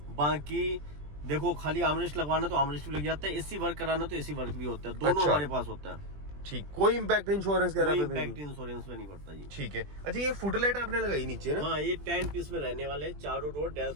बाकी देखो, खाली आर्मरेस्ट लगवाना तो आर्मरेस्ट भी लग जाता है, एसी वर्क कराना तो एसी वर्क भी होता है, दोनों अच्छा, हमारे पास होता है। ठीक, कोई इम्पैक्ट इंश्योरेंस कोई वगैरह पे इम्पैक्ट नहीं? इंश्योरेंस में नहीं पड़ता जी। ठीक है। अच्छा, ये फुट लाइट आपने लगाई नीचे ना? हाँ, ये 10 पीस में रहने वाले, चारों door,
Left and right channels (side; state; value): left; late; 20 ms